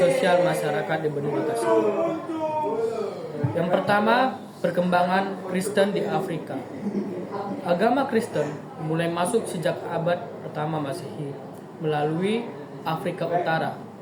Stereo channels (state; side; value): identical; both; correlation 1.00